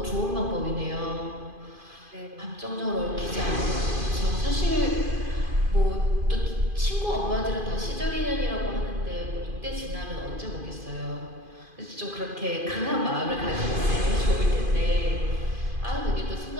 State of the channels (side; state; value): left; late; 2.5 ms